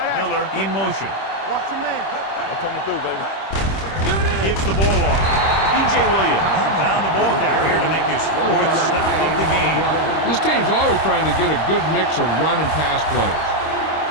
Miller in motion. Watch the man. I'm coming through, baby. Gives the ball off. DJ Williams found the ball carrier to make his 4th stop of the game. This team's always trying to get a good mix of run and pass plays.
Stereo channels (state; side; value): late; right; 26 ms